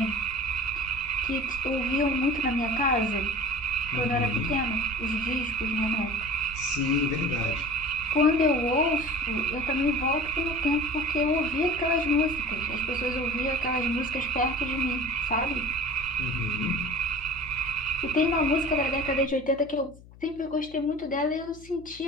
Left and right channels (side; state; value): left; noise; hum, 21 dB below the sound